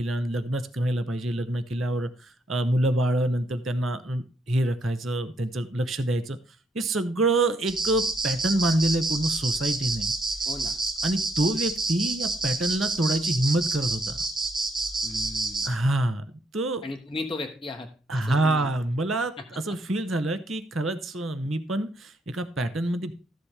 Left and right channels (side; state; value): both; normal; correlation 0.74